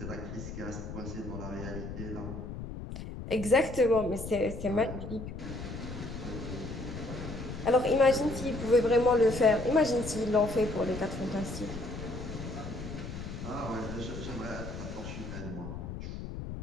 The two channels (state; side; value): noise; left; rumble, 8 dB below the sound